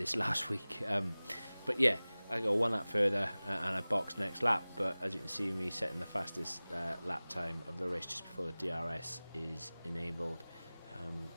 last week. But yeah, I go one lap further and I box next lap. But as you can see, me setting the fastest lap time of the race just before the DRS is enabled.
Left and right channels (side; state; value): both; inverted; correlation -0.99